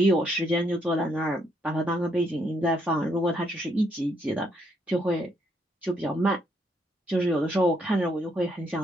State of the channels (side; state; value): both; normal; correlation 0.72